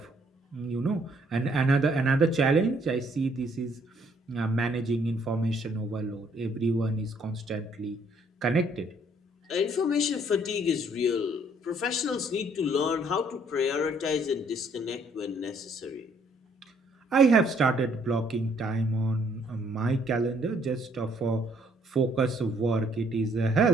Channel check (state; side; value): normal; both; correlation 0.65